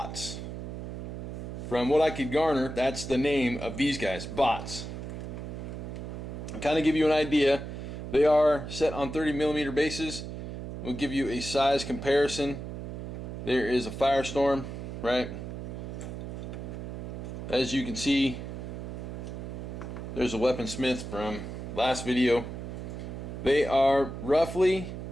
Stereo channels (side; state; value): right; noise; hum, 7 dB below the sound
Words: From what I could garner, that's the name of these guys, bots. I'll kind of give you an idea. They are set on 30mm bases. We'll give you a size comparison. There is a firestorm, right? As you can see, there's a weaponsmith from last video. They are roughly